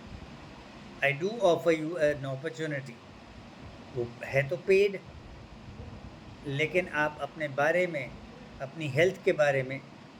I do offer you an opportunity. वो है तो पेड, लेकिन आप अपने बारे में, अपनी हेल्थ के बारे में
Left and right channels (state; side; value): identical; both; correlation 1.00